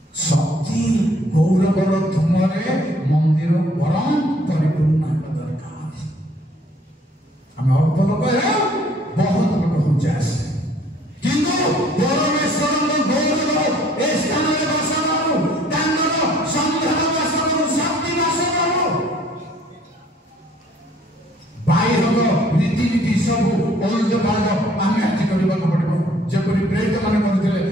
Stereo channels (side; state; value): both; normal; correlation 0.59